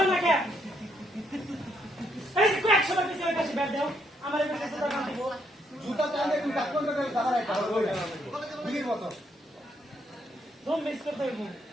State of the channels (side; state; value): both; normal; correlation 0.74